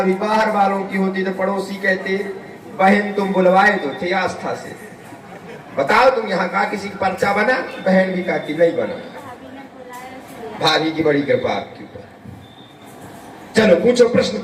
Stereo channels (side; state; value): both; identical; correlation 1.00